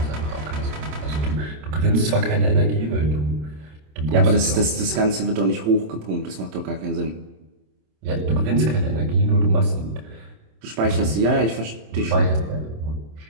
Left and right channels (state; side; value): late; left; 27 ms